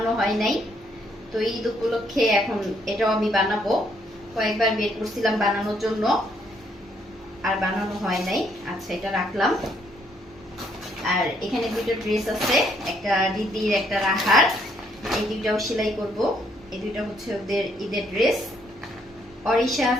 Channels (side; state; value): both; normal; correlation 0.70